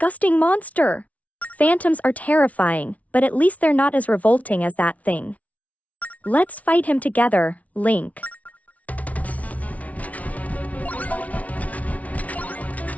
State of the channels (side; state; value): right; late; 0.068 ms